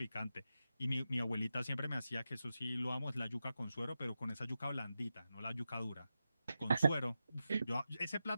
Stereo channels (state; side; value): inverted; both; correlation -0.91